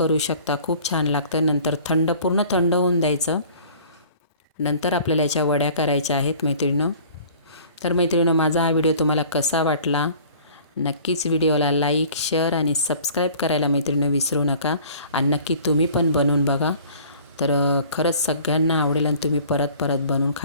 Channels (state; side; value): inverted; both; correlation -0.49